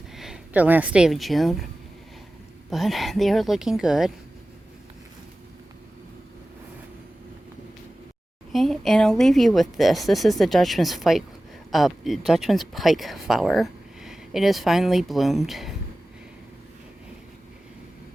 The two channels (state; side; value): normal; both; correlation 0.96